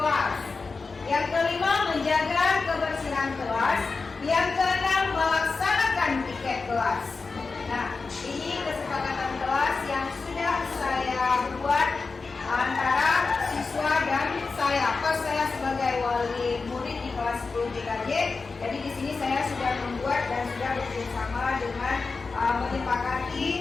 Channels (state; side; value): quieter; right; 4.3 dB